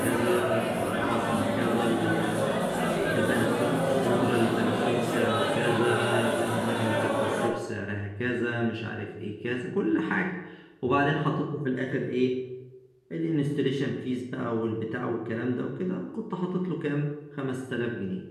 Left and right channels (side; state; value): both; identical; correlation 1.00